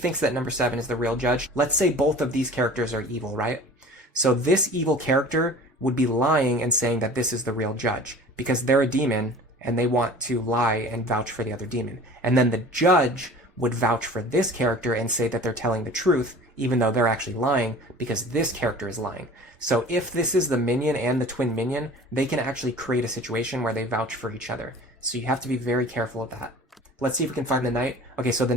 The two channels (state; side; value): normal; both; correlation 0.43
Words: that number 7 is the real judge. Let's say both of these characters are evil, right? So this evil character would be lying and saying that this is the real judge, because they're a demon and they want to lie and vouch for the other demon. And then the judge would vouch for this character and say that they're telling the truth, even though they're actually lying, because this character is lying. So if this is the minion and the twin minion, they can actually create a situation where they vouch for each other. So you have to be very careful of that. Let's see if we can find the knight. Okay, so the